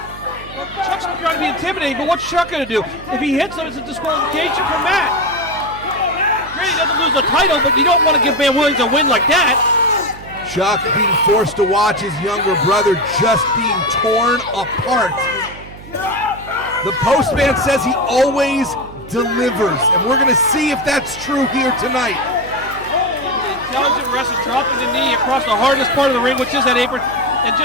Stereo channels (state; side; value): noise; right; hum, 16 dB below the sound